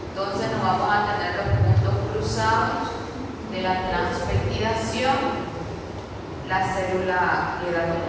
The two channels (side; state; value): both; identical; correlation 1.00